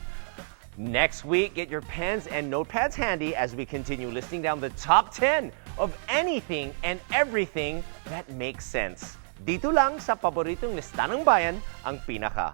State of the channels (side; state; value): left; silent; digital silence